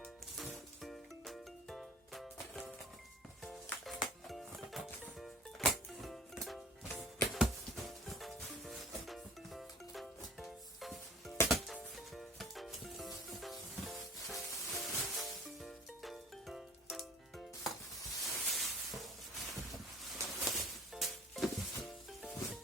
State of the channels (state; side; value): normal; both; correlation 0.48